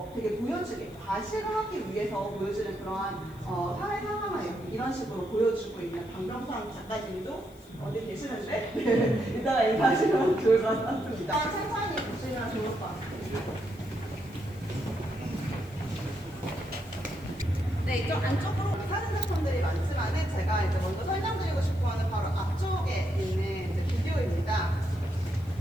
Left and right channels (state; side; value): noise; left; hiss, 26 dB below the sound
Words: 되게 보여주게 과시를 하기 위해서 보여주는 그러한 사회 상황을 이런 식으로 보여주고 있는 방병상 작가님도 어디 계시는데 이따가 인사하시면 좋을 것 같습니다. 천천히 보시면 좋을 것 같아요. 네, 이쪽 안쪽으로 사진 작품들이 많지만은 제가 이제 먼저 설명드리고 싶어하는 바로 앞쪽에 있는 이제 비디오입니다.